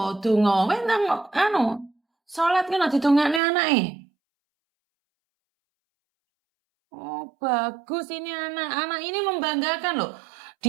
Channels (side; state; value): left; drops out; at 3.4 s